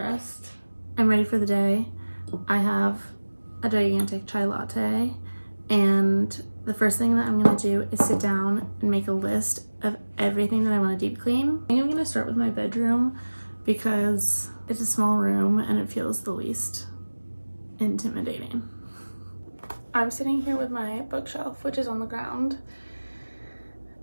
I'm ready for the day. I have a gigantic chai latte, and the first thing that I'm gonna do is sit down and make a list of everything that I want to deep clean. I think I'm gonna start with my bedroom because it's a small room and it feels the least intimidating. I'm sitting here with my bookshelf, which is on the ground,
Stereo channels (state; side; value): inverted; both; correlation -1.00